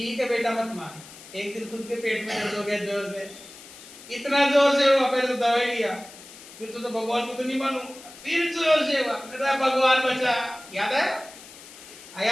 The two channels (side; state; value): left; noise; hiss, 18 dB below the sound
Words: है बेटा मत मान। एक दिन खुद के पेट में दर्द हो गया जोर से, इतना जोर से हुआ, पहले तो दवाई लिया, फिर तो भगवान को तो नहीं मानू, फिर जोर से हुआ, मेरा भगवान बचा। याद आया?